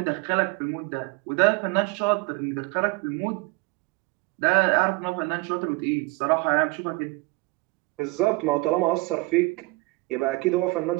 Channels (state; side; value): quieter; left; 24.7 dB